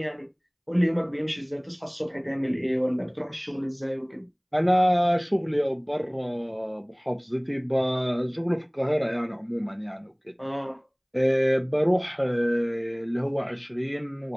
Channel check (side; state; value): both; identical; correlation 1.00